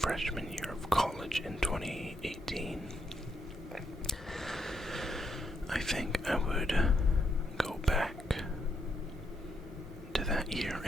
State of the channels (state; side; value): normal; both; correlation 0.78